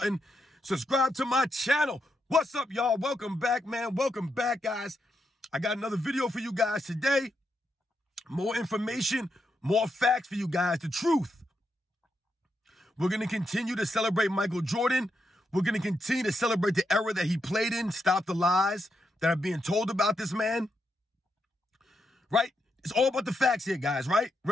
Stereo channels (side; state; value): both; normal; correlation 0.83